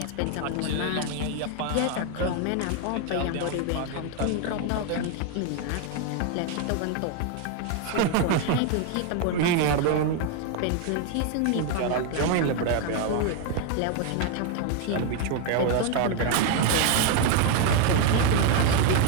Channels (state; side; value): different; both; correlation 0.01